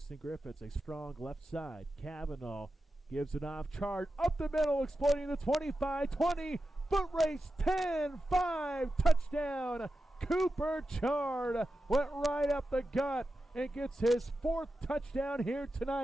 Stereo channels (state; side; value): normal; both; correlation 0.91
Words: Griffiths, a strong left side. Kavanaugh gives it off, charge up the middle, exploiting the 25-20, foot race, 10-5, touchdown. Cooper Chard went right up the gut and gets his 4th touchdown here